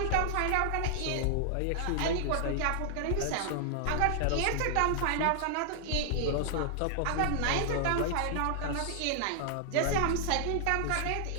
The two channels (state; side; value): different; both; correlation -0.01